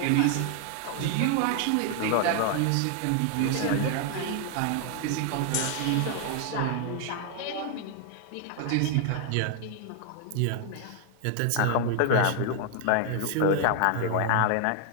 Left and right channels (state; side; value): different; both; correlation 0.00